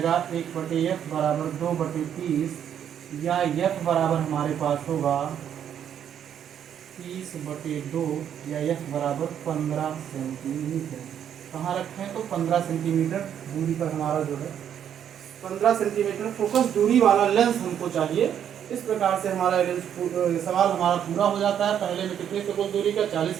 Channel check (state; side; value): quieter; left; 9.3 dB